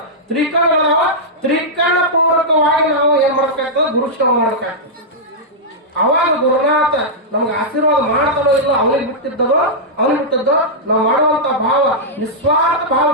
ತ್ರಿಕರಣಗಳವ. ತ್ರಿಕರಣ ಪೂರ್ವಕವಾಗಿ ನಾವು ಏನ್ ಮಾಡ್ಬೇಕಾಗ್ತದೆ? ಗುರು ಸೇವಾ ಮಾಡ್ಬೇಕಾಗ್ತದೆ. ಅವಾಗ ಗುರುನಾಥ ನಮ್ಗೆ ಆಶೀರ್ವಾದ ಮಾಡ್ತಾನೋ ಇಲ್ಲ, ಅವನಿಗೆ ಬಿಟ್ಟಿದ್ದೋ ನಾವು ಮಾಡುವಂತ ಭಾವ ನಿಸ್ವಾರ್ಥ ಭಾವ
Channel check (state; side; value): normal; both; correlation -0.09